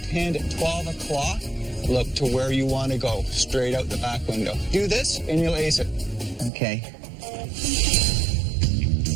hand at 12 o'clock. Look to where you want to go, straight out the back window. Do this, and you'll ace it. Okay.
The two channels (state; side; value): drops out; left; at 6.5 s